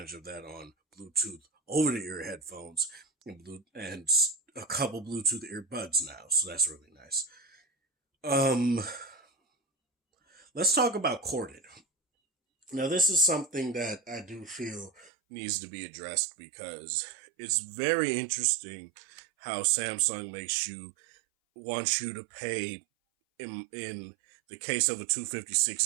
of that on Bluetooth over the ear headphones and a couple Bluetooth earbuds now, so that's really nice. Um, let's talk about corded. Now, this is something that I do feel needs to be addressed because it's very interesting how Samsung makes you wants you to pay in the case of a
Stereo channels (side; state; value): left; drops out; at 15.1 s